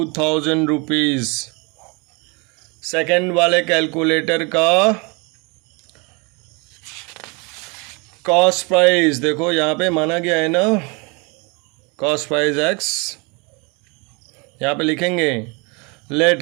रुपीज़। सेकेंड वाले कैलकुलेटर का कॉस्ट प्राइस देखो यहाँ पे माना गया है ना, कॉस्ट प्राइस एक्स, यहाँ पे लिखेंगे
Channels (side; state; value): left; quieter; 30.1 dB